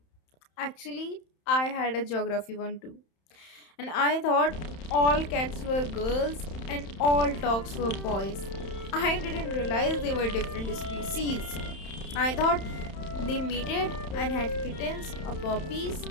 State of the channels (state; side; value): late; right; 31 ms